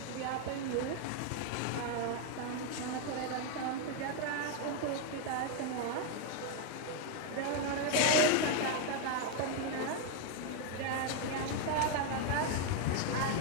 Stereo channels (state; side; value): different; both; correlation 0.01